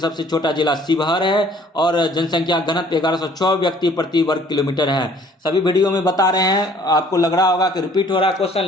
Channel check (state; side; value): normal; both; correlation 0.56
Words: छोटा जिला शिवहर है। और जनसंख्या घनत्व 1106 व्यक्ति प्रति वर्ग किलोमीटर है। सभी वीडियो में बता रहे हैं, आपको लग रहा होगा कि रिपीट हो रहा है क्वेश्चन,